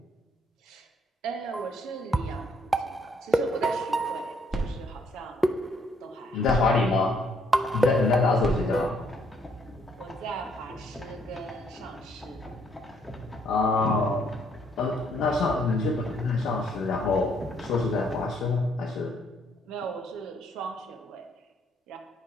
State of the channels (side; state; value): both; normal; correlation 0.69